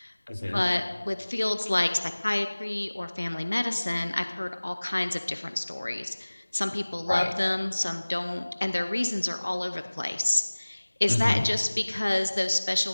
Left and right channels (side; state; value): both; inverted; correlation -1.00